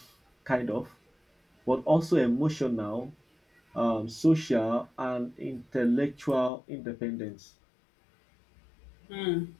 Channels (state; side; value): drops out; right; at 6.5 s